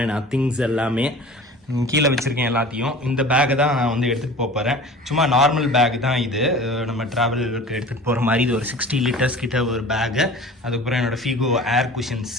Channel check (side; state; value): both; normal; correlation 0.41